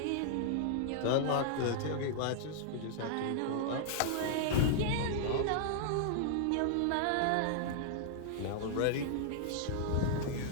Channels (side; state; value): both; different; correlation -0.01